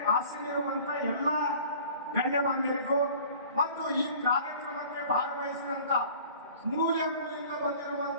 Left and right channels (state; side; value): inverted; both; correlation -0.46